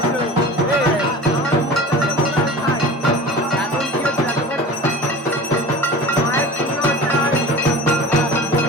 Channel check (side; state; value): both; normal; correlation 0.37